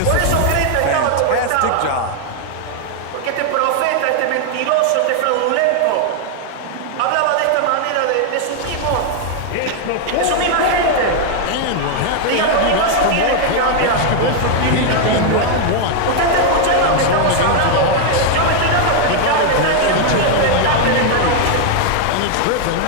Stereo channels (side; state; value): both; different; correlation 0.00